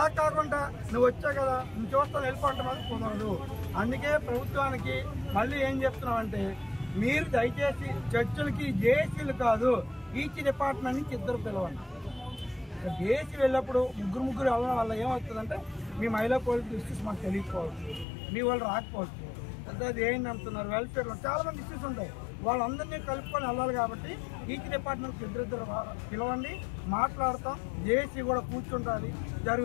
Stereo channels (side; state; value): right; drops out; at 18.1 s